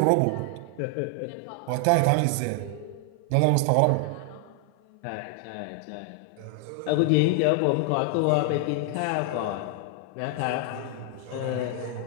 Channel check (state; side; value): different; both; correlation 0.00